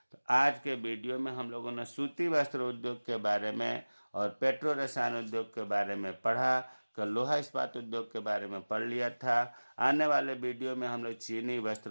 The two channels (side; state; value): both; inverted; correlation -1.00